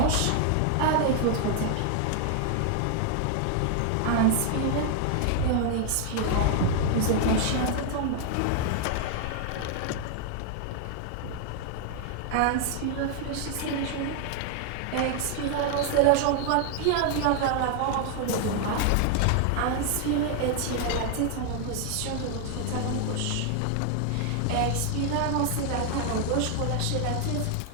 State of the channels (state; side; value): different; both; correlation 0.00